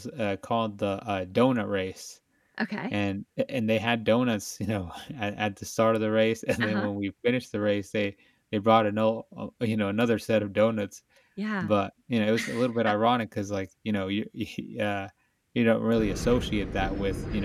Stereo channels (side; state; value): both; identical; correlation 1.00